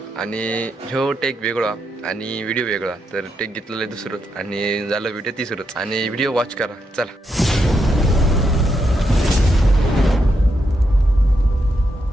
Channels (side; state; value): both; normal; correlation 0.82